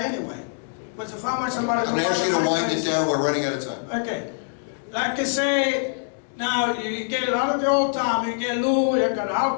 anyway. But if I want somebody to... I'm gonna ask you to wind it down, we're running out of time. Okay. Like I say, now you get a lot of the old time, you get Lou, you got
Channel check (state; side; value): silent; right; digital silence